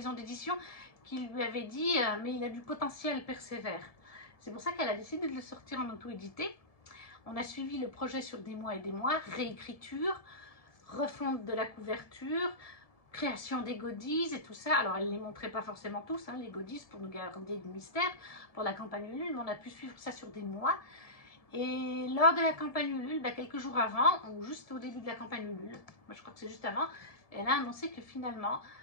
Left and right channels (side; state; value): right; late; 1.7 ms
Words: d'édition qui lui avaient dit « mais il a du potentiel, persévère ». C'est pour ça qu'elle a décidé de le sortir en auto-édité. On a suivi le projet sur des mois et des mois, réécriture, refonte de la couverture, création des goodies et tout ça. Alors, elle ne les montrait pas forcément tous, hein, les goodies, pour nous garder du mystère pour la campagne Ulule, mais on a pu suivre ça sur des mois. Et lors de la campagne Ulule, quelques jours avant, ou juste au début de la campagne Ulule, moi je crois que c'est juste avant, elle a annoncé que finalement,